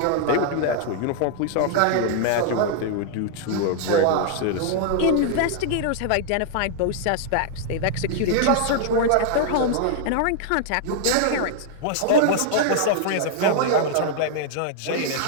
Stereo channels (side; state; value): both; different; correlation -0.01